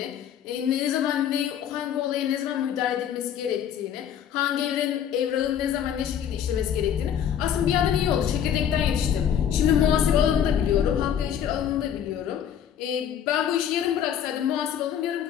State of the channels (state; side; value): quieter; right; 9.2 dB